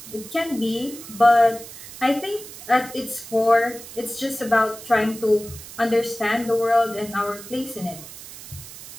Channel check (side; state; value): right; noise; hiss, 15 dB below the sound